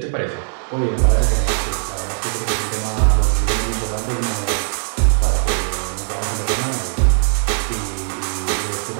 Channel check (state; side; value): silent; left; 61 dB below the other